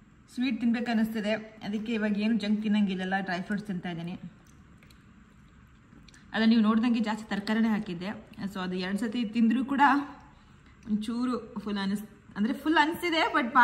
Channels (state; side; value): identical; both; correlation 1.00